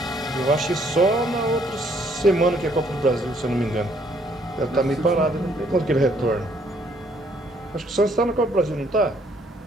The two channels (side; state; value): both; normal; correlation 0.66